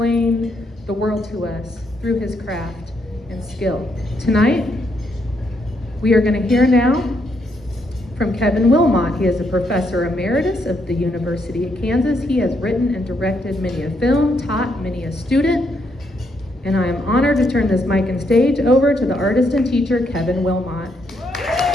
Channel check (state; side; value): normal; both; correlation 0.76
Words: the world to us through his craft and skill. Tonight, we are going to hear now from Kevin Willmott. He is a professor emeritus of the University of Kansas. He has written and directed many a film, taught many a student, and I am honored to turn this mic and stage over to the artist and teacher, Kevin Willmott.